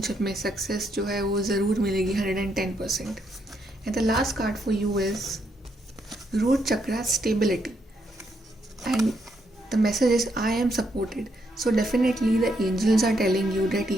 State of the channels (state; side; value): normal; both; correlation 0.76